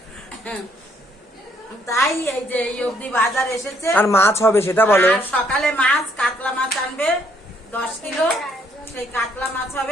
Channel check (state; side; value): normal; both; correlation 0.68